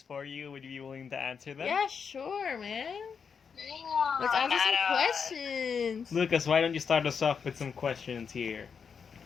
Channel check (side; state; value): right; quieter; 6.3 dB